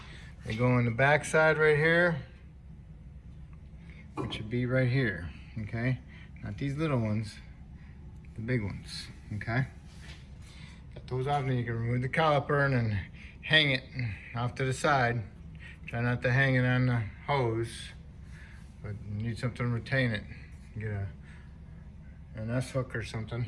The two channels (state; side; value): identical; both; correlation 1.00